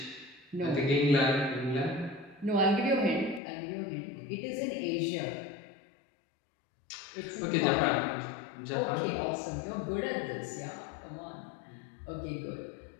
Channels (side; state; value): right; drops out; at 3.4 s